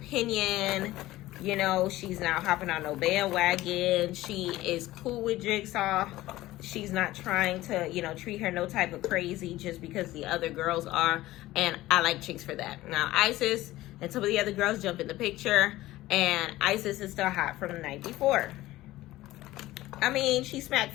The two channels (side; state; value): right; quieter; 16.7 dB